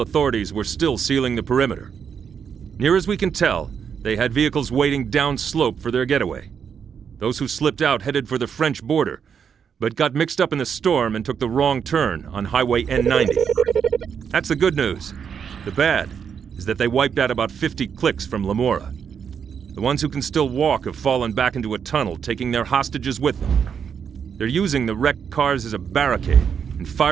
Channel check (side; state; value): left; quieter; 7.2 dB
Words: authorities were still sealing the perimeter. Near as we can tell, they had vehicles waiting downslope for their getaway. Those who slipped out headed for the French border, but got mixed up in the storm and took the wrong turn on Highway N90. That's the good news. The bad is that they wiped out about 50 clicks from Lamora. The ones who can still walk have fallen back into a tunnel, taking their hostages with them. They're using the wrecked cars as a barricade and